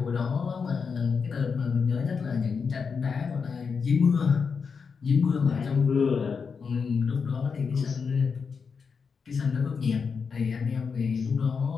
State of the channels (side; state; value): right; quieter; 5.6 dB